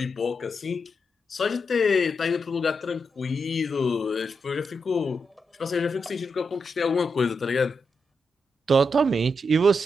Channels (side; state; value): both; normal; correlation 0.84